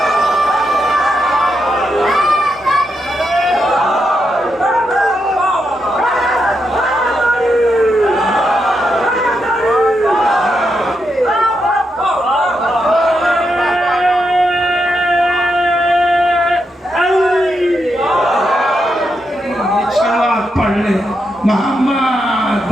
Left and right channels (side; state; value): both; normal; correlation 0.83